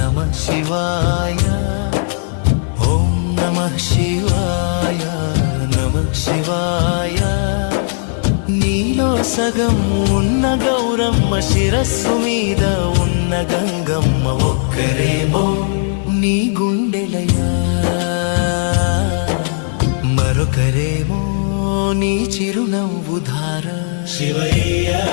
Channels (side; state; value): right; silent; 56 dB below the other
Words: शिवाय ॐ नमः शिवाय नमः शिवाय నీలో సగం ఉన్న గౌరమ్మ శిరస్సు మీద ఉన్న గంగమ్మ ఒక్కరేమో నీ గుండెలయా మరొకరేమో నీ చిరునవ్వు ధార శివయ్య